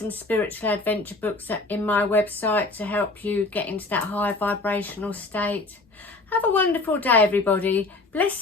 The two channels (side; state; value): right; quieter; 3.3 dB